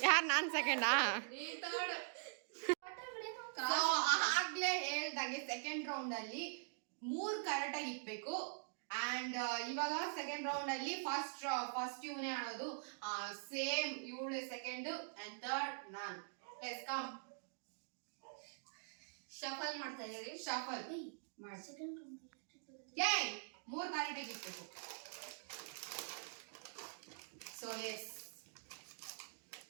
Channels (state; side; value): silent; left; digital silence